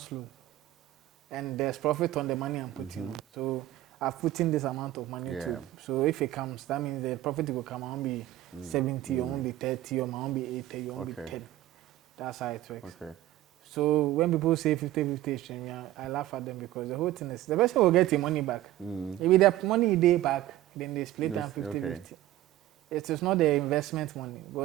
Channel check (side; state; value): left; quieter; 14.8 dB